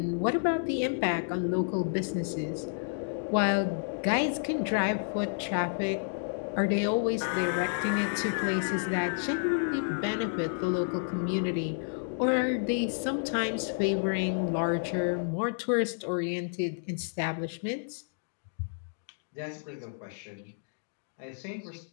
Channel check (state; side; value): silent; right; digital silence